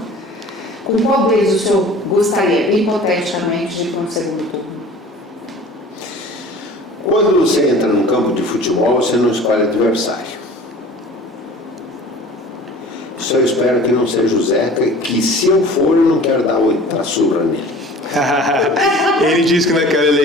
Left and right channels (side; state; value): both; normal; correlation 0.44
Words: Com qual deles o senhor gostaria, hipoteticamente, de ir para um segundo turno? Quando você entra num campo de futebol, você não escolhe adversário. Só espero que não seja o Zeca, que se eu for, eu não quero dar outra surra nele. Ele disse que naquela